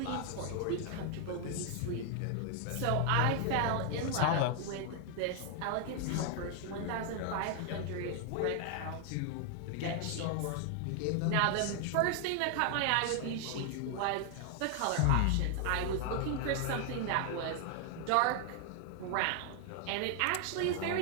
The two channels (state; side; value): different; both; correlation 0.00